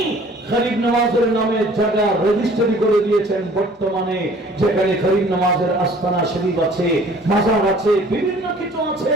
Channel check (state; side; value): normal; both; correlation 0.52